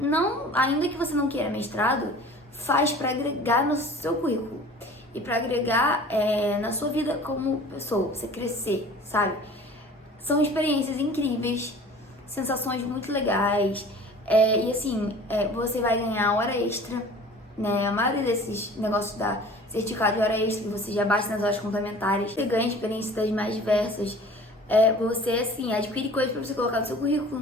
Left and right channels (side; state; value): both; normal; correlation 0.44